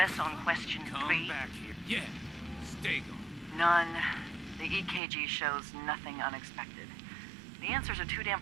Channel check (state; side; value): drops out; left; at 5.0 s